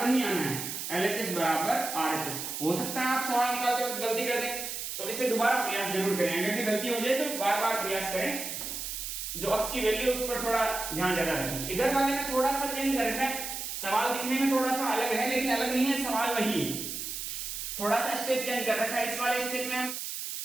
ही आना है, LHS बराबर RHS। हो सकता है आप सवाल निकालते वक्त गलती कर दें, तो इसे दोबारा प्रयास जरूर करें, अगर गलती हो जाए तो बार बार प्रयास करें। जो अक्स की वैल्यू उस पर थोड़ा ध्यान ज्यादा रखें। इधर वाले में थोड़ा सा चेंज कर रखा है, सवाल दिखने में थोड़ा सा अलग है, लेकिन अलग नहीं है, सवाल वही है, थोड़ा सा स्टेप चेंज कर रखा है। इस वाले स्टेप में हम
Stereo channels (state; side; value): noise; right; hiss, 5 dB below the sound